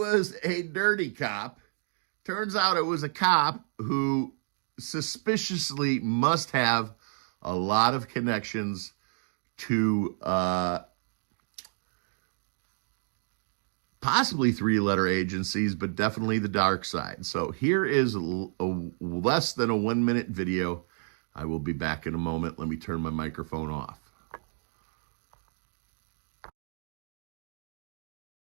a dirty cop. Turns out it was a cop who suspiciously must have a lot of connections to possibly three-letter agencies, but definitely the dark side. So here is a less than a 1-minute video. I will be back in a moment. Let me turn my microphone off.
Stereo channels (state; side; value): silent; left; digital silence